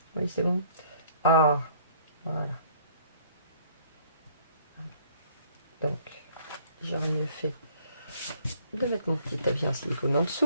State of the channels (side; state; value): both; inverted; correlation -0.59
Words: Oui, c'est bon. Ah, voilà. Donc, j'aurais mieux fait de mettre mon petit tapis en silicone en